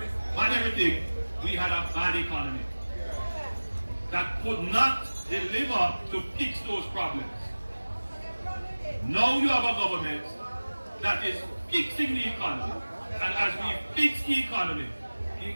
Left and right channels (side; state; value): both; inverted; correlation -1.00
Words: bad everything, we had a bad economy that could not deliver to fix those problems. Now you have a government that is fixing the economy. And as we fix the